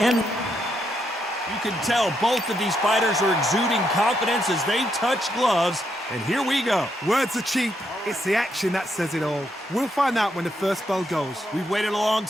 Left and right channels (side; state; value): both; normal; correlation 0.78